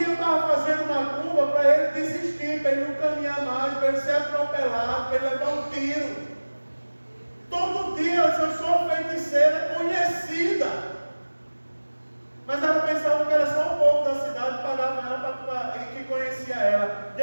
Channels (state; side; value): inverted; both; correlation -1.00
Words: eu estava fazendo macumba para ele desistir, para ele não caminhar mais, para ele ser atropelado, para ele levar um tiro. Todo dia eu sou feiticeira conhecida. Mas ela pensava que era só o povo da cidade que pagava ela que conhecia ela.